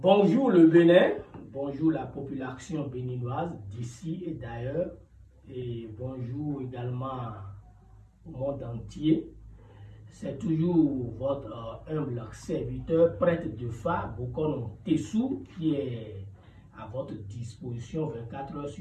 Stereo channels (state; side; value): identical; both; correlation 1.00